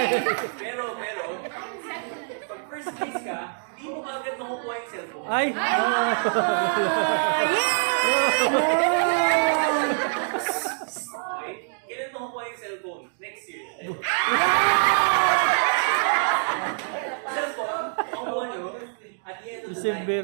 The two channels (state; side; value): silent; left; digital silence